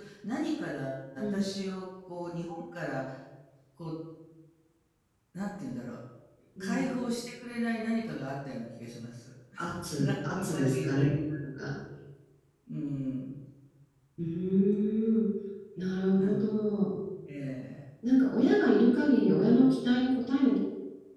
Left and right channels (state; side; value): identical; both; correlation 1.00